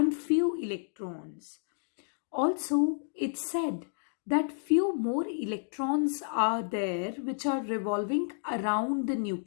few electrons. Also, it said that few more electrons are there which are revolving around the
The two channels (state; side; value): silent; right; digital silence